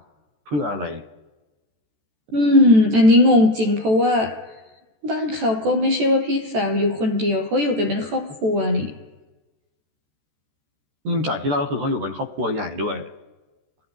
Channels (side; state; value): left; late; 14 ms